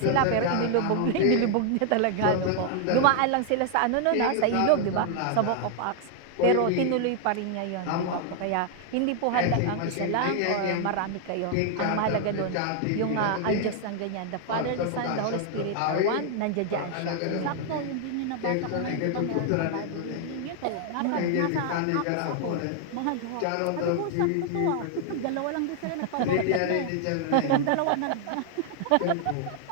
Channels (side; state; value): both; different; correlation 0.00